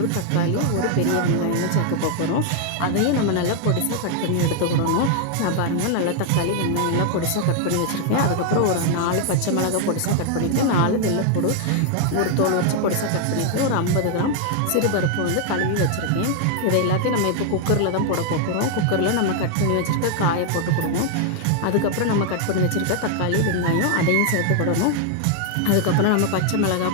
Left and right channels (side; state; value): both; different; correlation 0.00